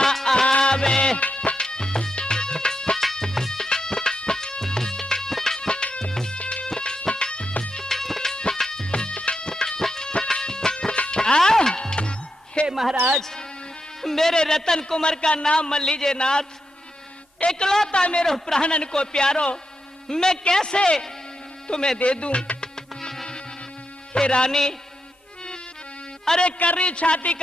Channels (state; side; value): normal; both; correlation 0.85